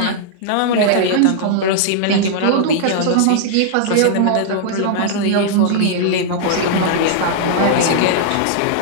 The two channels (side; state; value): both; different; correlation -0.01